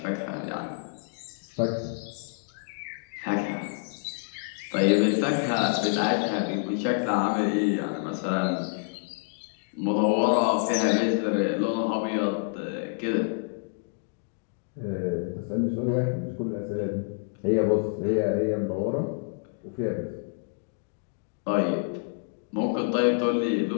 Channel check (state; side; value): silent; right; digital silence